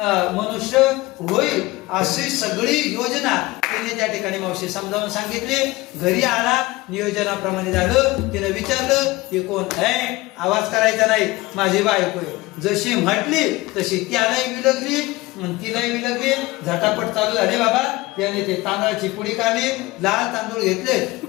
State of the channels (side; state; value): right; quieter; 20.4 dB